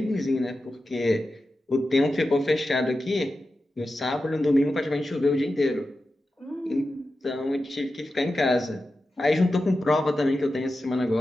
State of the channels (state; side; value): normal; both; correlation 0.92